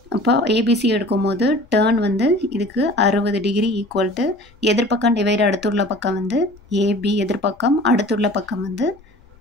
அப்போ ஏபிசி எடுக்கும் போது டேர்ன் வந்து இதுக்கு 60 டிகிரி ஈக்குவல் டு எதிர்பக்கம் டிவைடு அடுத்துள்ள பக்கம் வந்து ஏபி, எதிர்பக்கம் அடுத்துள்ள பக்கம் வந்து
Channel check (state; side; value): noise; left; rumble, 27 dB below the sound